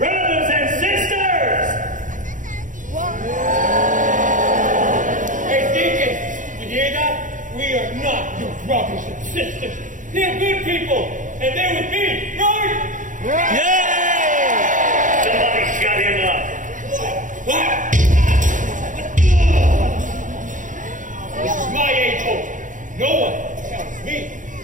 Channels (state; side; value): late; left; 0.37 ms